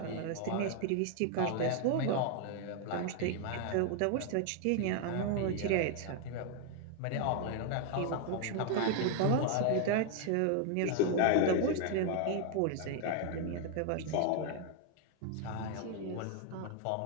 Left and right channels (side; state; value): both; different; correlation 0.00